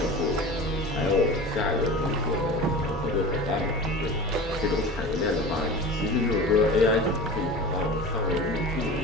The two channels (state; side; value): normal; both; correlation 0.35